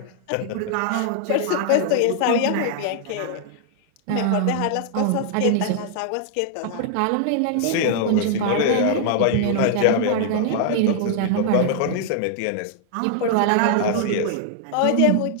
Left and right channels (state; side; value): different; both; correlation 0.00